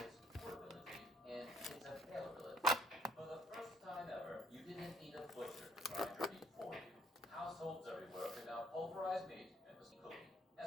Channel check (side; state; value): both; normal; correlation 0.64